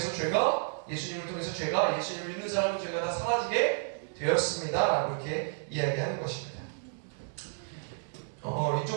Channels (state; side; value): silent; left; digital silence